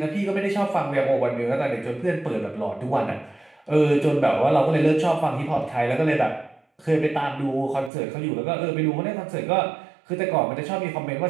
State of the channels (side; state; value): left; drops out; at 7.9 s